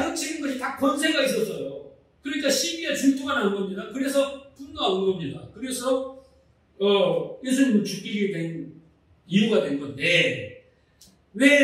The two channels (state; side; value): identical; both; correlation 1.00